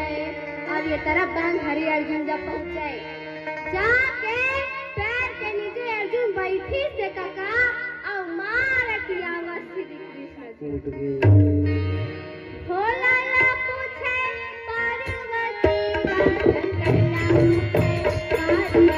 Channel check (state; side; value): identical; both; correlation 1.00